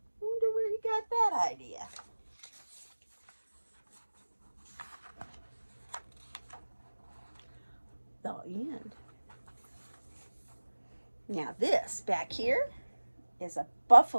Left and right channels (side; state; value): both; inverted; correlation -1.00